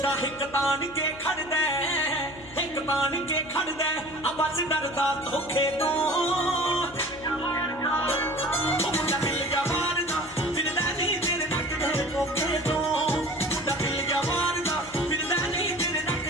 हिक तान के खड़दा हिक तान के खड़दा आ बस डरदा धोखे तो मुंडा दिल जवान दा फिरदा नहीं तेरे नक दे धोखे तो मुंडा दिल जवान दा फिरदा नहीं तेरे नक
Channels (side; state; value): left; noise; hum, 19 dB below the sound